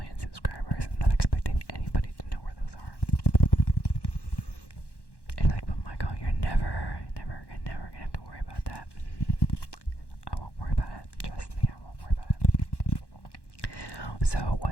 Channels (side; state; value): right; late; 1.1 ms